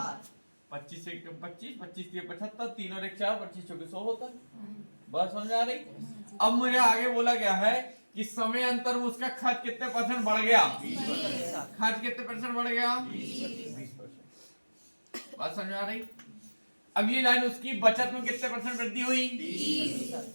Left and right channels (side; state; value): both; inverted; correlation -1.00